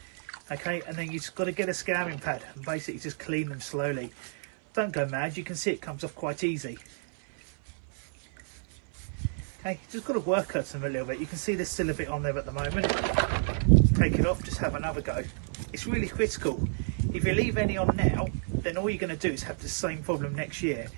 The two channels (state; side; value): silent; left; 58 dB below the other